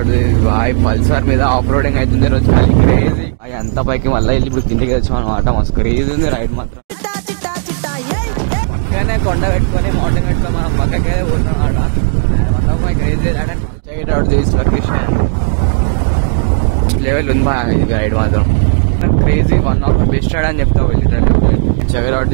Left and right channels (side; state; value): left; silent; digital silence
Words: boy. Pulsar మీద ఆఫ్ రోడింగ్ అవుతుంది రోజు, క్రేజీ. అంత పైకి మళ్ళీ వెళ్ళి ఇప్పుడు కిందికి వచ్చాం అనమాట. మస్తు క్రేజీ ఉంది రైడ్ మాత్రం. పక్కనే కొండ పెట్టుకొని మౌంటైన్ పెట్టుకొని మనం పక్కకే పోతున్నాం అనమాట. Crazy check it out this location. Level ఉంది బాగా ఇది రైడ్ మాత్రం crazy. One of my best ride అని చెప్తావు literally. Check it out